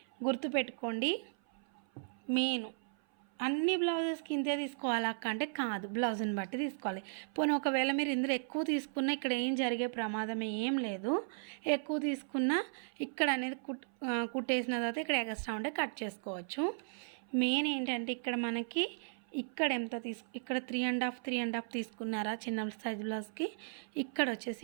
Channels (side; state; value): left; silent; 54 dB below the other